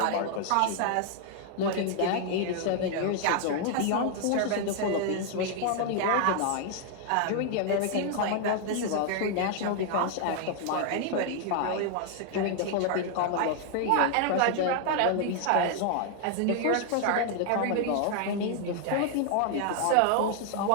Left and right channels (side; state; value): both; different; correlation 0.00